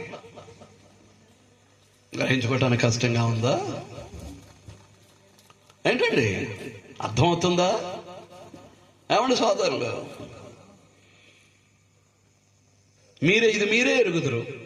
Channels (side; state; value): both; identical; correlation 1.00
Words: గ్రహించుకోవటానికి కష్టంగా ఉందా ఏంటండి? అర్థమవుతుందా? ఏమండి సోదరులు, మీరే ఎరుగుదురు.